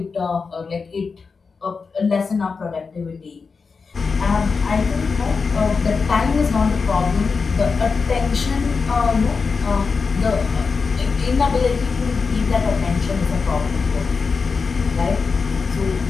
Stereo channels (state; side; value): quieter; right; 4.9 dB